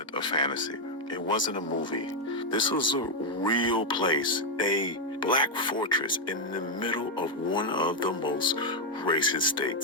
a fantasy. It wasn't a movie. This was a real place, a black fortress in the middle of one of the most racist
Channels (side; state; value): both; normal; correlation 0.02